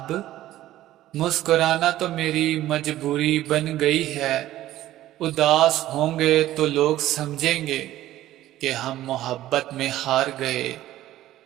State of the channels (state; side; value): quieter; left; 14.3 dB